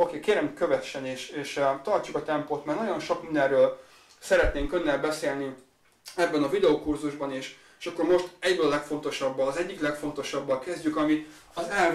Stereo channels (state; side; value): identical; both; correlation 1.00